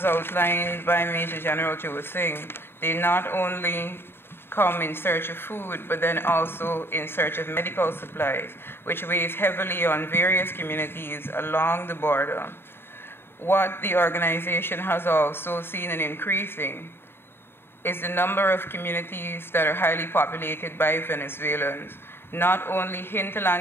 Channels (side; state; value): right; late; 0.11 ms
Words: outlined by Major General Joe Singh, they not only come in search of food, but then also in search of medical supplies, which weighs heavily on various communities along the border. What the organization has also seen an increasing is the number of communities that are highly populated by Venezuelans, not only